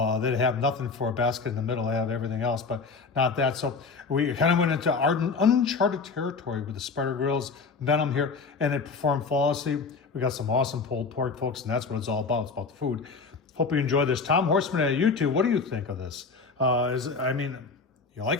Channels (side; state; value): right; quieter; 4.6 dB